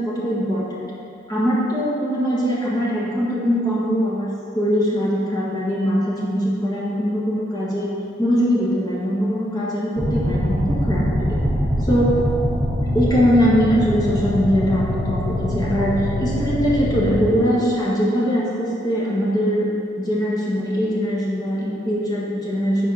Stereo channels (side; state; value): both; normal; correlation 0.77